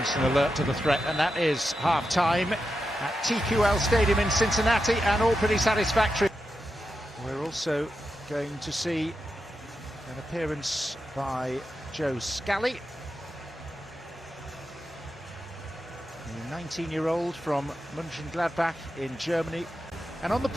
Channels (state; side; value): normal; both; correlation 0.88